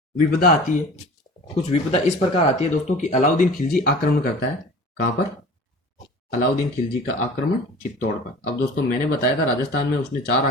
विपदा आती है, कुछ विपदा इस प्रकार आती है दोस्तों कि अलाउद्दीन खिलजी आक्रमण करता है। कहां पर? अलाउद्दीन खिलजी का आक्रमण चित्तौड़ पर। अब दोस्तों मैंने बताया था राजस्थान में उसने 4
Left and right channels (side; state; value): both; normal; correlation 0.41